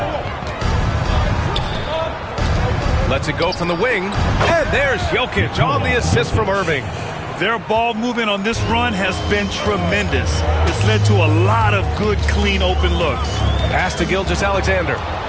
Lets it go from the wing. And there's Jokic on the assist from Irving. Their ball movement on this run has been tremendous. It's led to a lot of good, clean, open looks. Pass to Gilgeous-Alexander.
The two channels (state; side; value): identical; both; correlation 1.00